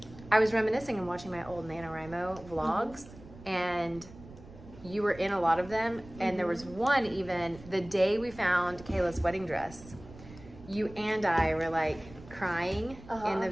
I was reminiscing and watching my old NaNoWRIMO vlogs, and you were in a lot of them, and there was one even, the day we found Kayla's wedding dress, you and I were like crying in the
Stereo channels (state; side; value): noise; right; rumble, 18 dB below the sound